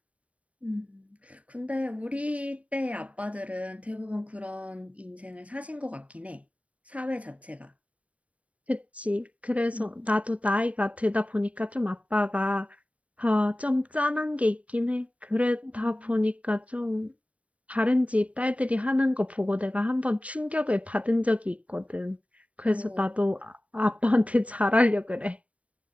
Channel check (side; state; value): left; late; 0.067 ms